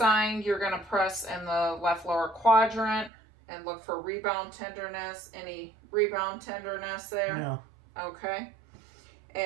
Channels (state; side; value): drops out; left; at 3.1 s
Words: you're going to press in the left lower quadrant and look for rebound tenderness. Any rebound tenderness there? No. Okay.